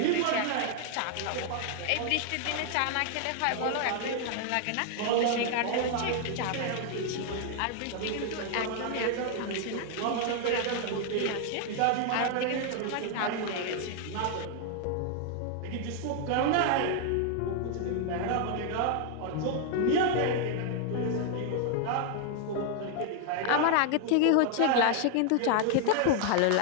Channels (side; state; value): both; different; correlation 0.00